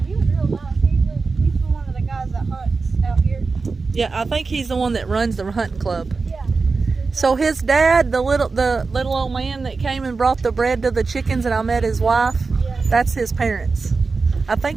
he was real nice. He's one of the guys that hunts out here. Yeah, I think he's the one that runs the hunting club. Yeah. So his dad, the little old man that came and brought the bread to the chickens, and I met his wife. Yeah. That's his parents. I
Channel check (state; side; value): quieter; left; 4.3 dB